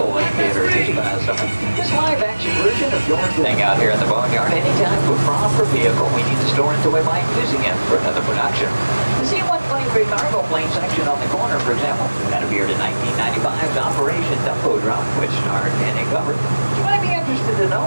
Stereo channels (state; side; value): inverted; both; correlation -1.00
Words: in theaters this past summer. This live-action version of George's thing out here in the boneyard. Anytime with proper vehicle, we need to store it until we might using it for another production. The C-123 cargo plane section on the corner, for example, that appeared in 1995's Operation Dumbo Drop, which starred Danny Glover. You might be interested to